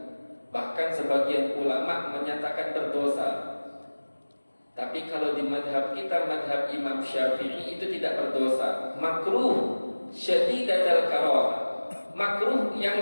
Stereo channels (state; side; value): inverted; both; correlation -1.00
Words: Bahkan sebagian ulama menyatakan berdosa. Tapi kalau di madhab kita, madhab Imam Syafi'i, itu tidak berdosa, makruh syadidatul karah, makruh yang